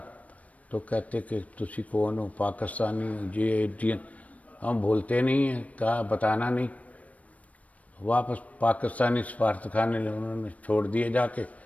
تو کہتے کہ تسی کون ہو، پاکستانی ہو، یہ انڈین، ہم بولتے نہیں ہیں، کہا بتانا نہیں، واپس پاکستانی سفارت خانے لے انہوں نے چھوڑ دیے جا کے۔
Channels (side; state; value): right; late; 0.068 ms